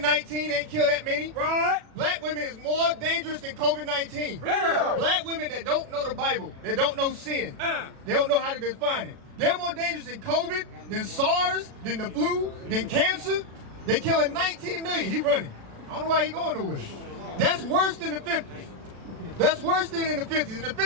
ain't killed that many. Right. Black women is more dangerous than COVID-19. Bring it out. Black women that don't know the Bible, that don't know sin, Uh. they don't know how to define it. They're more dangerous than COVID, than SARS, than the flu, than cancer. They killing 19 million. He running. I don't know why he going nowhere. That's worse than the 50s. That's worse than in the 50s. In the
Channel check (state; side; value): late; left; 36 ms